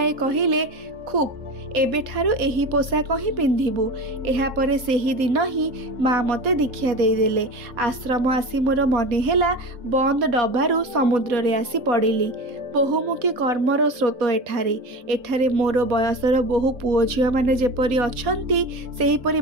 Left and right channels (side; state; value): left; late; 4.1 ms